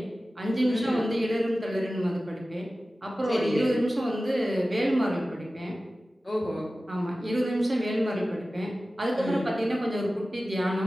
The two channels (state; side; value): normal; both; correlation 0.96